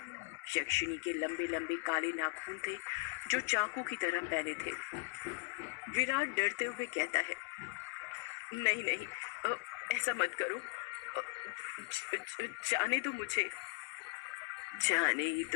यक्षिनी के लंबे लंबे काले नाखून थे जो चाकू की तरह पहने थे। विराट डरते हुए कहता है, नहीं नहीं, ऐसा मत करो, जाने दो मुझे। जाने ही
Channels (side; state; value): right; quieter; 26.6 dB